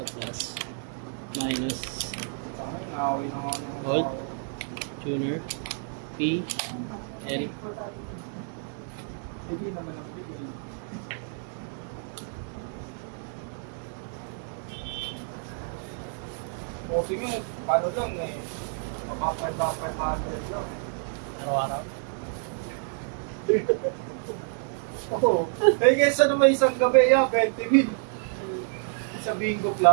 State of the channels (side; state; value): left; silent; 59 dB below the other